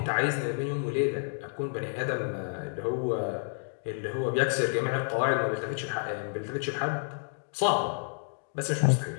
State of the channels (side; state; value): right; silent; digital silence